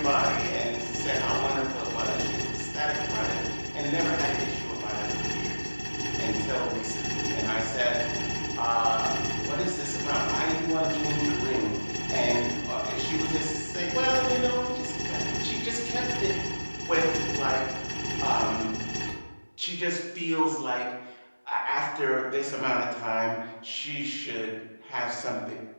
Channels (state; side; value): inverted; both; correlation -1.00